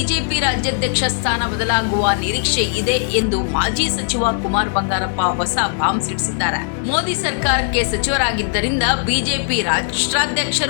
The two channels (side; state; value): right; silent; 64 dB below the other